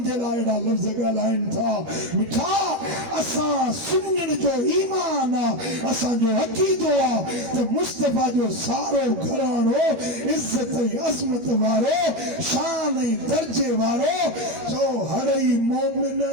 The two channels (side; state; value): left; late; 13 ms